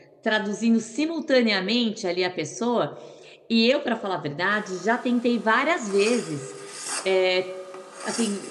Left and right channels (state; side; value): identical; both; correlation 1.00